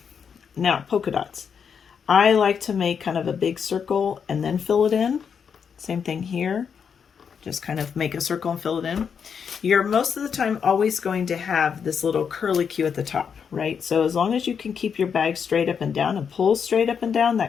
Now, polka dots. I like to make kind of a big circle and then fill it in. Same thing here. Just kind of make a circle and fill it in. You're most of the time always going to have this little curly Q at the top, right? So as long as you can keep your bag straight up and down and pull straight up and down,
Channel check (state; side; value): quieter; right; 6.8 dB